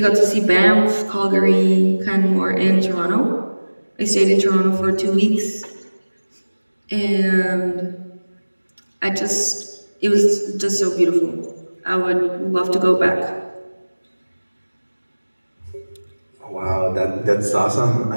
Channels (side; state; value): both; inverted; correlation -1.00